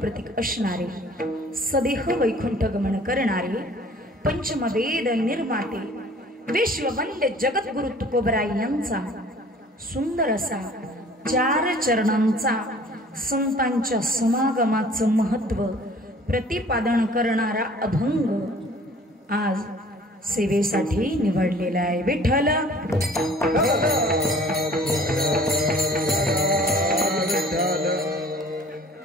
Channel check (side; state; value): both; normal; correlation 0.51